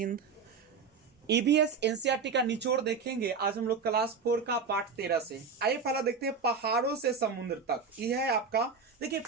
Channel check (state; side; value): quieter; left; 5.3 dB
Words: EBS NCERT का निचोड़ देखेंगे आज हम लोग क्लास 4 का पाठ 13 से। आइए पहला देखते हैं पहाड़ों से समुद्र तक। यह है आपका, देखिए